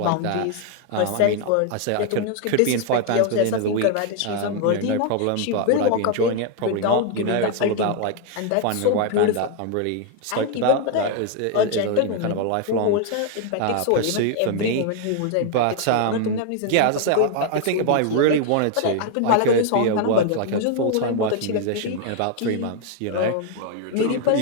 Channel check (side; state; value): both; different; correlation 0.00